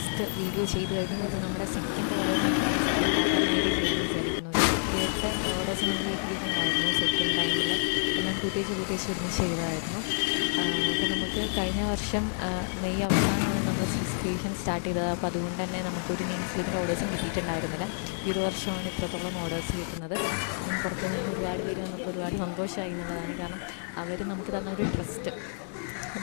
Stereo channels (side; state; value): right; silent; digital silence